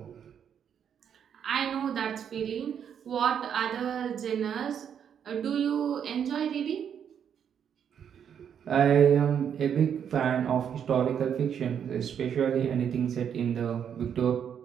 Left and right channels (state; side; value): quieter; left; 8.3 dB